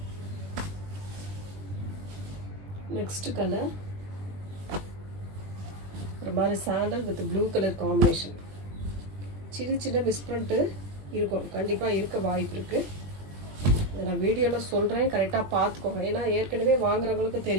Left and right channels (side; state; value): left; late; 20 ms